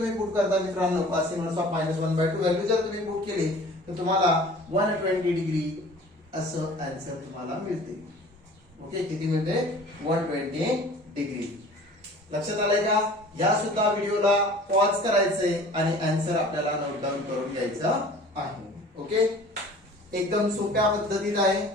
पुट करता मित्रांनो cos इन्व्हर्स ऑफ -1/2 व्हॅल्यू जर तुम्ही पुट केली तर तुम्हाला 120 डिग्री असं आन्सर तुम्हाला मिळते. ओके, किती मिळते 120 डिग्री. लक्षात आलंय का? या सुद्धा व्हिडिओला पॉज करायचंय आणि आन्सर आपल्याला नोट डाऊन करून घ्यायचा आहे. ओके, एकदम सोप्या पद्धतीत आहे.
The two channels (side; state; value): both; normal; correlation 0.46